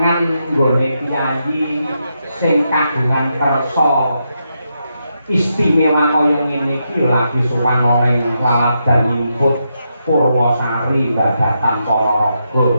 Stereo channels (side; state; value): both; inverted; correlation -0.83